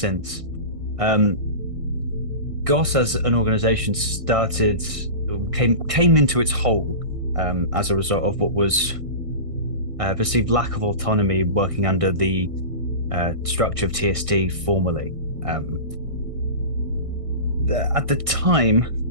GOS as an organisation came into its whole as a result of what was perceived lack of autonomy working under the structure of TST formally. At the time,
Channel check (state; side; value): late; left; 1.6 ms